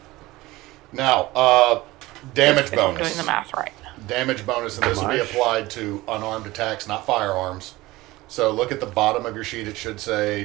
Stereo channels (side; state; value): left; quieter; 19.2 dB